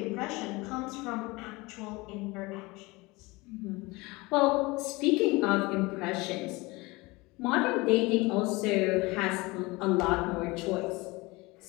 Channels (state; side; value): quieter; right; 23.4 dB